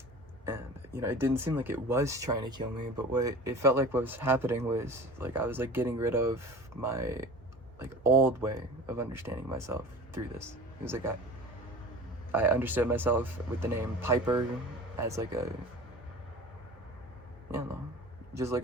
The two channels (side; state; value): both; normal; correlation 0.38